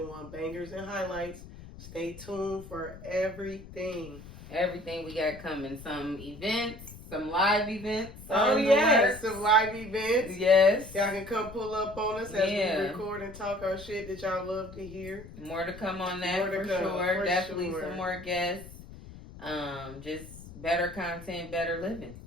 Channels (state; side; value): noise; left; rumble, 16 dB below the sound